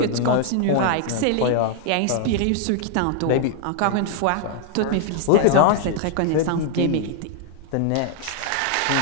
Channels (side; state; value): both; different; correlation 0.00